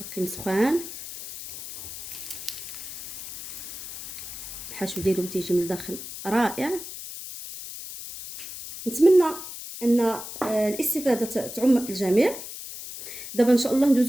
سخان. الحشو ديالهم تيجي من الداخل رائع. نتمنى ان الاستفاده تعم الجميع. دابا ان شاء الله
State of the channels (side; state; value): left; noise; hiss, 10 dB below the sound